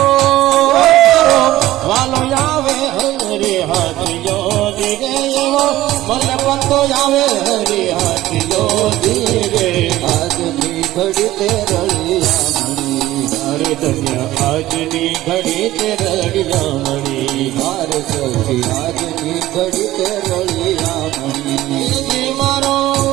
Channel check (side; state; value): left; quieter; 15.6 dB